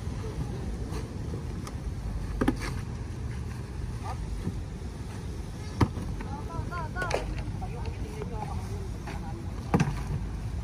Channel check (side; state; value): both; identical; correlation 1.00